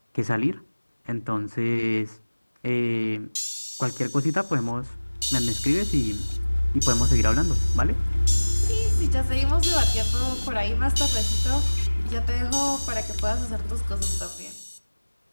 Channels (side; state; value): both; inverted; correlation -1.00